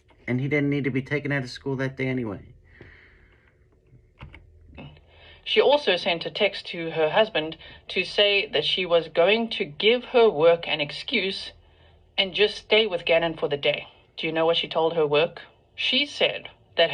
And he didn't need to be taken out of school that day anyway. She also sent a text to her husband to say that she was going to give her work an excuse and just stay with Gannon for the day. Do you know what she told her work? She said that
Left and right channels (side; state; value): both; identical; correlation 1.00